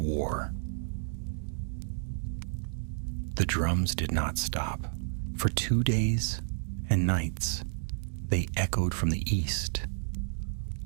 The drums did not stop. For 2 days and nights, they echoed from the east,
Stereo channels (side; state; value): left; silent; digital silence